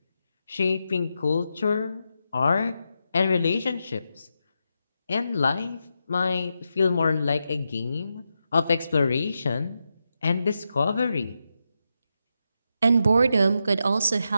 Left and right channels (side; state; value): both; inverted; correlation -0.86